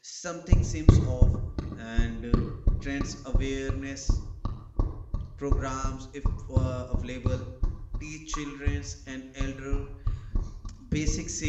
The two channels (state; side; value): identical; both; correlation 1.00